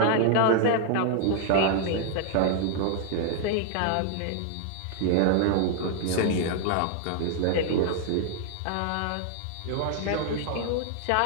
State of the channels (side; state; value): both; different; correlation 0.00